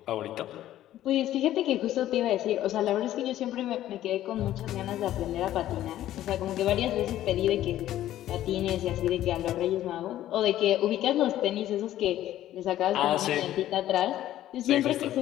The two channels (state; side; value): quieter; right; 13.2 dB